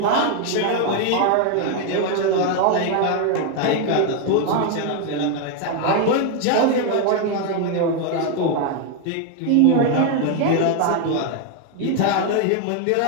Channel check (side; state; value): both; different; correlation 0.01